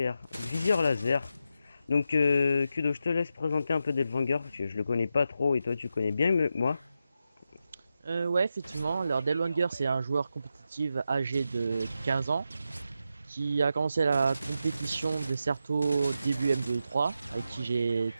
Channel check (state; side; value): inverted; both; correlation -0.87